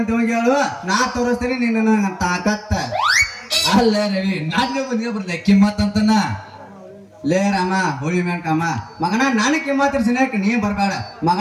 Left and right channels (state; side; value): identical; both; correlation 1.00